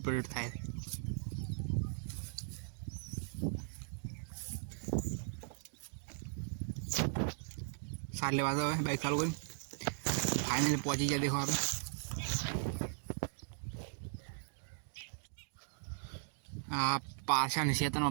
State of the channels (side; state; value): left; silent; digital silence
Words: थाय। साले वाला है बाइक चालू करी फाइनली पहुंची गया। देखो आप पाछा क्षेत्र